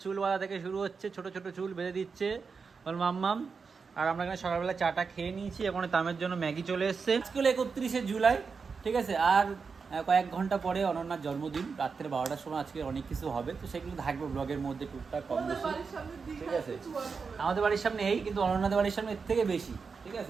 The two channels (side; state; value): left; quieter; 5.2 dB